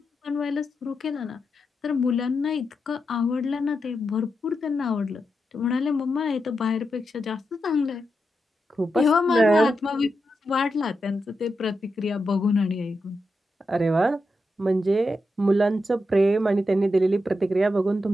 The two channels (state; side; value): normal; both; correlation 0.86